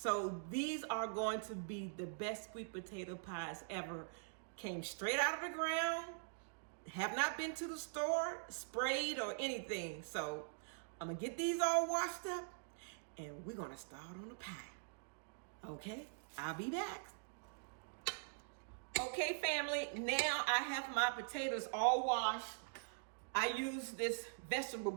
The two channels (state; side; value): silent; left; digital silence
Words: these are going to be the best sweet potato pies ever. Came straight out of the ground, have not been to the store, sprayed or anything. So I'm gonna get these all washed up, and we're gonna start on the pie. Okay, I'll be back. Okay, family, now I have my potatoes all washed. I use this vegetable